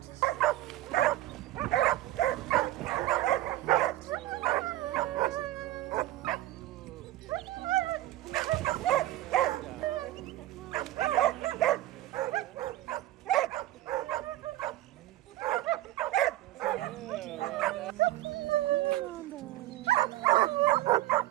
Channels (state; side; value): quieter; left; 15.8 dB